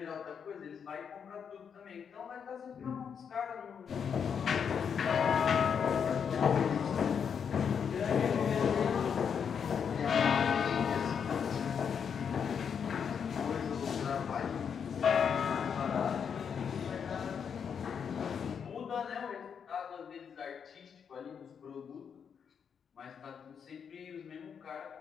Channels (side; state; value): right; quieter; 7.1 dB